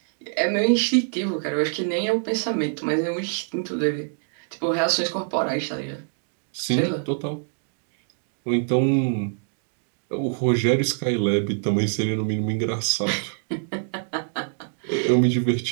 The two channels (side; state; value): left; silent; digital silence